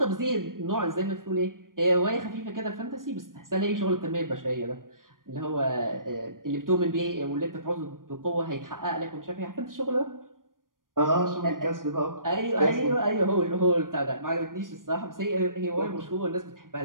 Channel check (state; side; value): late; left; 0.90 ms